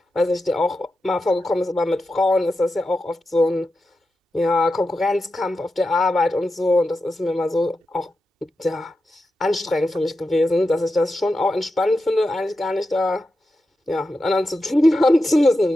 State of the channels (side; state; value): both; normal; correlation 0.90